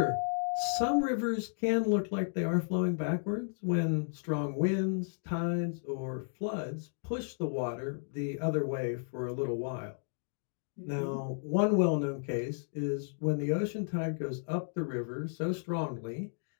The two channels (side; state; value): right; silent; digital silence